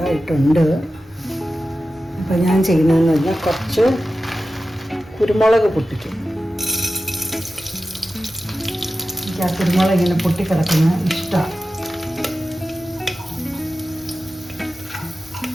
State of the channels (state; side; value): normal; both; correlation 0.93